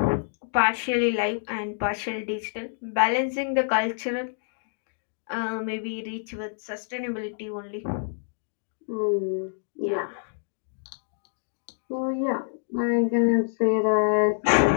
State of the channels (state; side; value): silent; right; digital silence